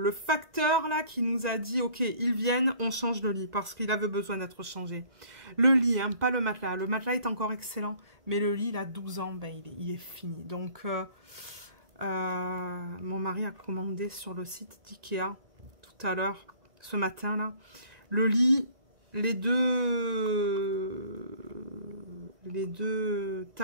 facteur là qui nous a dit, ok, ils viennent, on change le lit, parce qu'il avait besoin d'être changé. Le lit, hein, pas le matelas. Le matelas est encore excellent, mais le lit, il a 12 ans, ben, il est fini. Donc, mon mari a commandé sur le site d'Ikea, tout à l'heure, ce matin, là, le lit, les deux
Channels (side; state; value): left; late; 1.9 ms